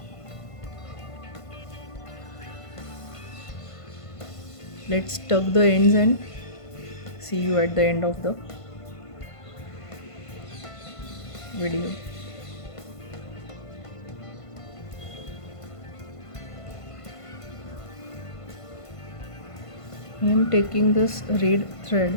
Let's tuck the ends and see you at the end of the video. I am taking this red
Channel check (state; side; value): late; right; 1.5 ms